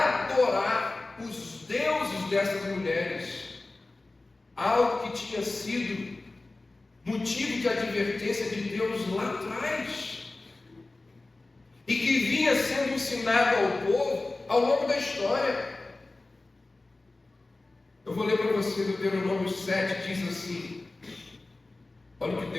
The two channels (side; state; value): right; quieter; 3.1 dB